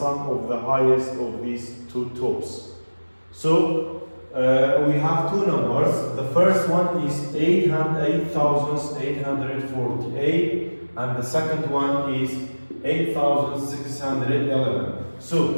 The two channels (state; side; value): inverted; both; correlation -1.00